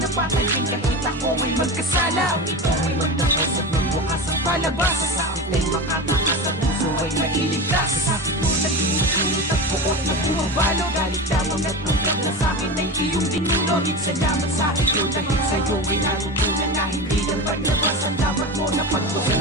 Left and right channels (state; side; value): normal; both; correlation 0.25